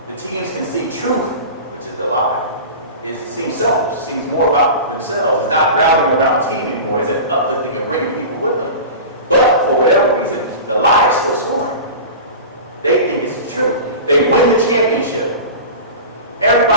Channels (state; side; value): inverted; both; correlation -0.32